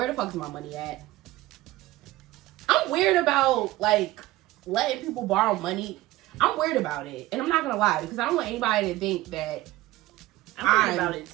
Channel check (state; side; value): quieter; left; 17.0 dB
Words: the fuck is my money at? I'm weird about, like, letting people borrow money. I'm weird about it. And I'm not going to lie, because I don't want anybody to think that I'm weird about it,